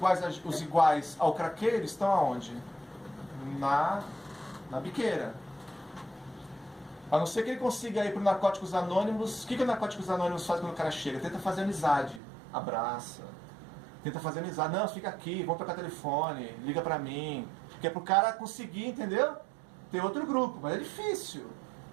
ao craqueiro estão aonde? Na biqueira. A não ser que ele consiga ir para o Narcóticos Anônimos. O que o Narcóticos Anônimos faz quando o cara chega? Tenta fazer amizade. Abraça. Tenta fazer amizade. Não, fica aqui, vamos trocar telefone, liga para mim. Que é para o cara conseguir, entendeu? Ter outro grupo. Mas é difícil.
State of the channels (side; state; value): left; drops out; at 12.2 s